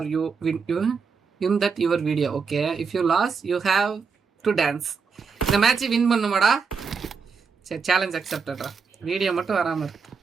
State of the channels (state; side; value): quieter; left; 5.5 dB